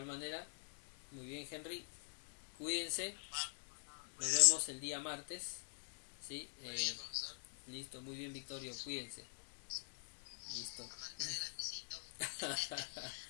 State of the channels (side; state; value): right; silent; digital silence